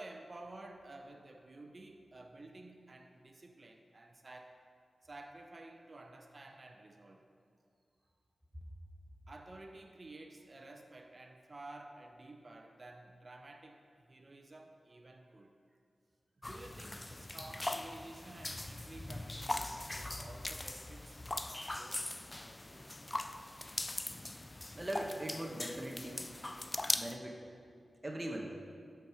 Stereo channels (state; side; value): normal; both; correlation 0.97